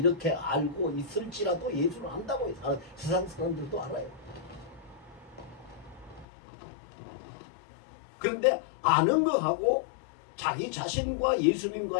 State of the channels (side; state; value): right; drops out; at 6.2 s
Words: 알고 있을지라도 예수를 안다고 세상 사람들도 알아요. 그런데 아는 거하고 자기 자신과